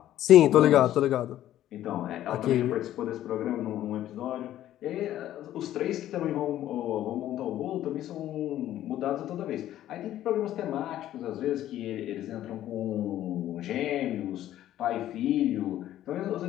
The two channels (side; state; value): right; quieter; 12.8 dB